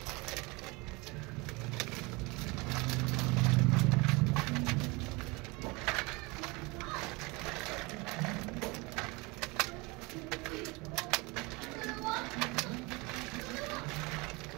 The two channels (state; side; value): quieter; left; 25.8 dB